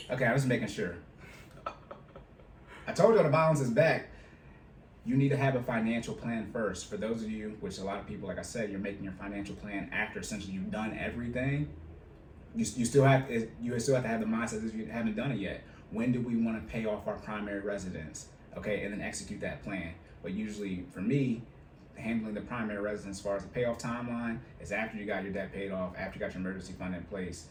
Okay, I was making sure. I told you the balance is back. You need to have a financial plan first. For those of you, which a lot of people, like I said, you're making your financial plan after essentially you've done everything. You still have to have the mindset that you haven't done it yet. When do we want to pay off our primary residence? Okay, and then execute that plan. But usually, for me, handling the primary residence as far as the payoff timeline is after you got your debt paid off, after you got your emergency fund in place,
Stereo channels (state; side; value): identical; both; correlation 1.00